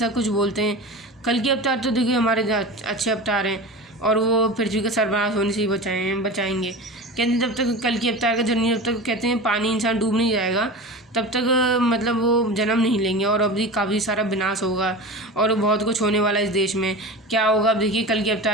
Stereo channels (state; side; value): normal; both; correlation 0.30